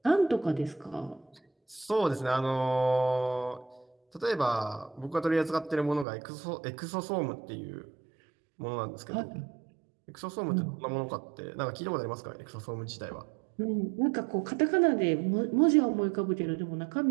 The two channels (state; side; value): drops out; left; at 6.1 s